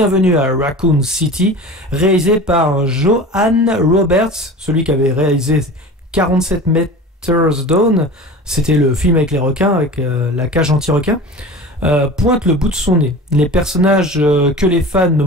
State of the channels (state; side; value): normal; both; correlation 0.36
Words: à Raccoon City, réalisé par Johan Roberts, celui qui avait réalisé 47 Meters Down, c'était le film avec les requins, avec la cage anti-requin, pointe le bout de son nez. Les personnages que les fans ne